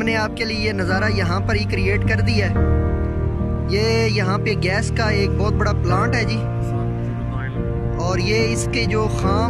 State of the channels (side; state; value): both; identical; correlation 1.00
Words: आपके लिए ये नज़ारा यहाँ पर ही क्रिएट कर दिया है। ये यहाँ पे गैस का एक बहुत बड़ा प्लांट है जी, और ये इसके जो